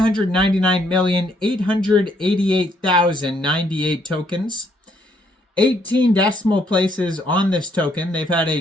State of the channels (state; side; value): normal; both; correlation 0.70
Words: tokens. 18 decimal places on this token. They've had